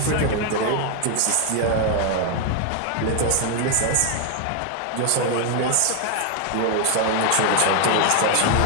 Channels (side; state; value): both; different; correlation 0.01